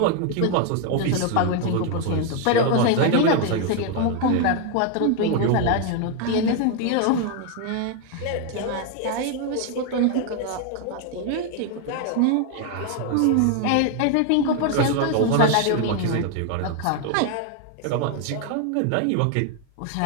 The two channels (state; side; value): different; both; correlation 0.01